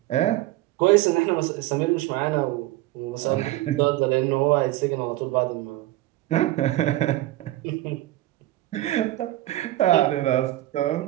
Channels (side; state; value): left; quieter; 16.4 dB